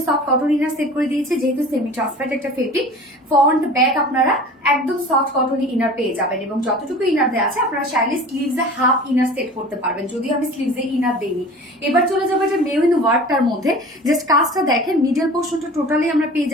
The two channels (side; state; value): both; normal; correlation 0.40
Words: সফট কটন ইনার সেট করে দিয়েছে, যেহেতু সেমি ট্রান্সপারেন্ট একটা ফেব্রিক। ফ্রন্ট ব্যাক আপনারা একদম সফট কটন ইনার পেয়ে যাবেন, এবং যতটুকু ইনার দেওয়া আছে আপনারা চাইলে স্লিভসে হাফ ইনার সেট করতে পারবেন, যদিও আমি স্লিভসে ইনার দেইনি। এবার চলে যাবো এটা মেরুন ওয়ার্কটার মধ্যে। জাস্ট কাজটা দেখেন, মিডল পোর্শনটা টোটালি আমরা পেয়ে